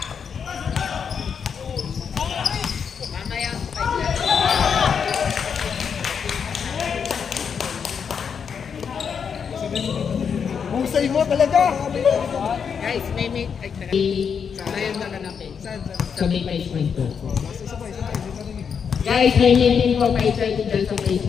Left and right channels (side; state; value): right; quieter; 6.8 dB